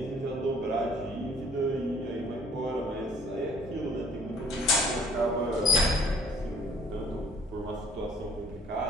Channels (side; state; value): both; normal; correlation 0.56